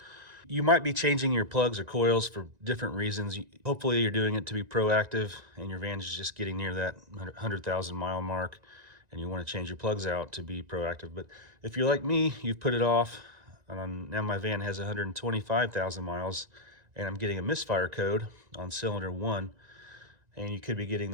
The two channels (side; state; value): left; late; 1.9 ms